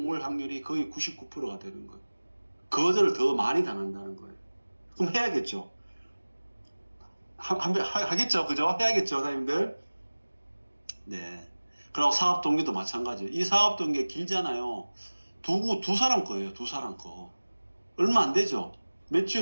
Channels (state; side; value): inverted; both; correlation -1.00